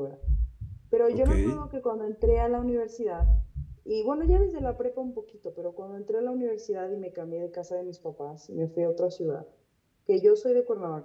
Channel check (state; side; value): identical; both; correlation 1.00